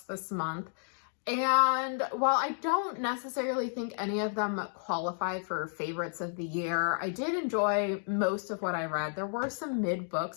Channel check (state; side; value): silent; right; digital silence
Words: month, and while I don't necessarily think any of them qualify for favorites of the year, I did enjoy most of what I read. There were some mid